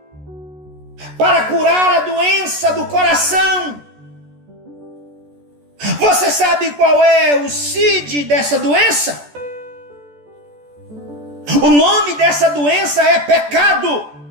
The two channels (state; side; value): late; left; 14 ms